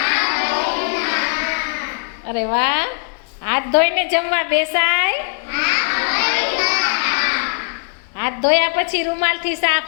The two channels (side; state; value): right; silent; digital silence